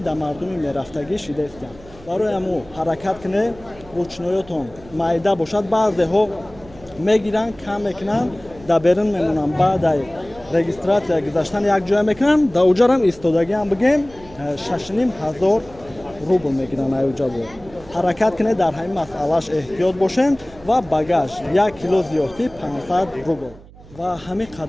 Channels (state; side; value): noise; right; hum, 21 dB below the sound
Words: мардуми мерафтагӣ шидестанд барои ҳамо ҳаракат кунед ручноётон майда бошад баъзеҳо мегиранд кам мекунанд дар берун мемонанд баъдаи регистратсия гузаштан якҷоя мекунанд дар уҷарам истодагиам бугем 6500 рубл мегиранд аюҷабо ҳаракат кунед дар ҳамин масъалаш эҳтиёт бошем ва багаж 1 кило зиёдтӣ 500 рубл ва ҳамин